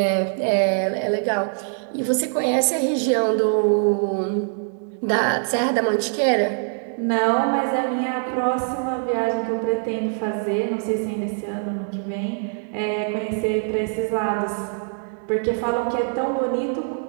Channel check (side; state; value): left; silent; digital silence